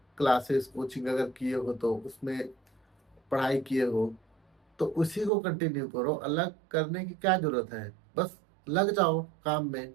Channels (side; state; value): left; drops out; at 5.3 s